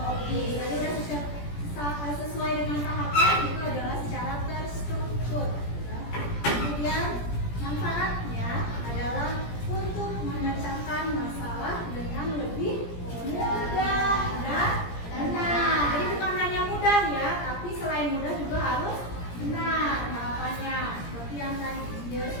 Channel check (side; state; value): right; late; 17 ms